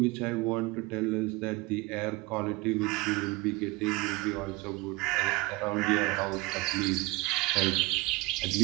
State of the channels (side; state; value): left; quieter; 21.9 dB